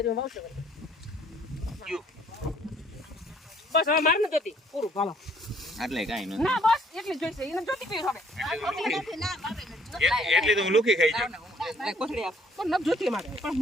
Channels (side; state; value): both; normal; correlation 0.62